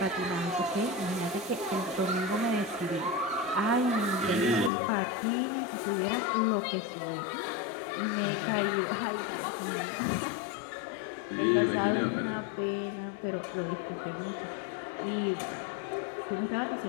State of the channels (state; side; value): drops out; right; at 4.7 s